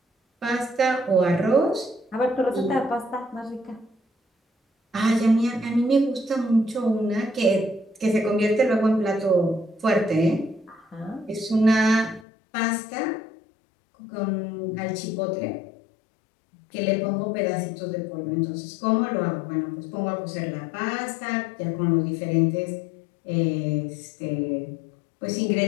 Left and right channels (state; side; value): drops out; right; at 12.2 s